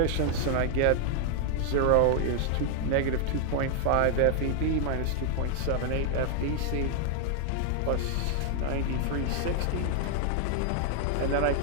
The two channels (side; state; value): both; different; correlation 0.00